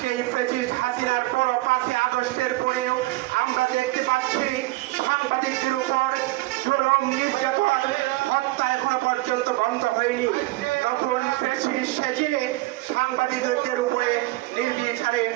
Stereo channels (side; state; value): left; quieter; 19.9 dB